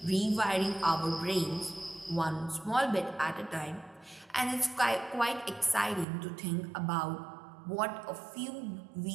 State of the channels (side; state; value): left; drops out; at 6.1 s